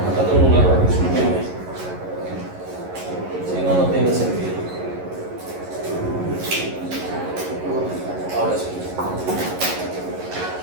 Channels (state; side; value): late; left; 11 ms